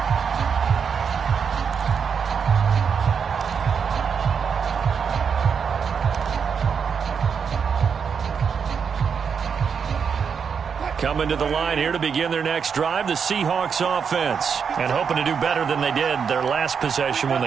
Coming to the line here to begin their next drive, the Seahawks offense. And hoping to do better than they did their last possession when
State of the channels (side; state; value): left; quieter; 6.6 dB